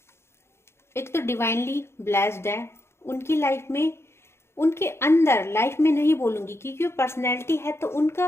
एक तो डिवाइनली ब्लेस्ड है। उनकी लाइफ में, उनके अंदर, लाइफ में नहीं बोलूंगी क्योंकि वो पर्सनैलिटी है, तो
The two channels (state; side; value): late; right; 0.12 ms